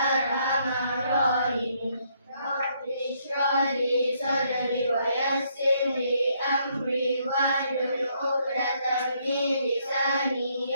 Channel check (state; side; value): inverted; both; correlation -0.71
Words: rahimin. Rabbi shrah li sadri wa yassir li amri wahlul 'uqdatam min lisani